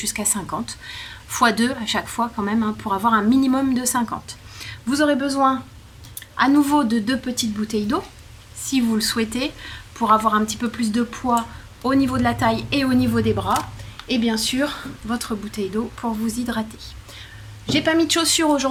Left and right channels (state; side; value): identical; both; correlation 1.00